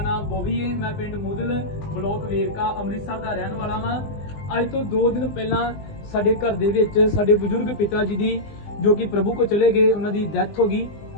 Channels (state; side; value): late; right; 20 ms